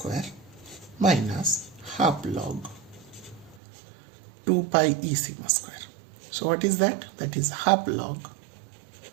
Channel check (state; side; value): drops out; left; at 3.6 s